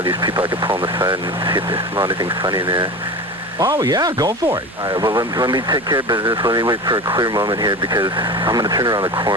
these people I could pull on the side and see if they smell anything funny in there. Oh, yeah, go for it. All right, well, let me take care of business. Let me wait for a clear moment here because I'm going to turn around the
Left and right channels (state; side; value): normal; both; correlation 0.29